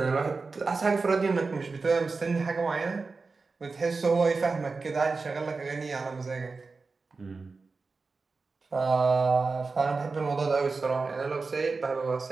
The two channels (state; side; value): quieter; left; 4.2 dB